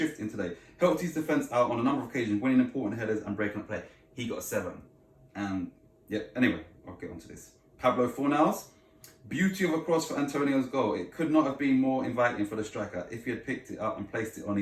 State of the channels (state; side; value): identical; both; correlation 1.00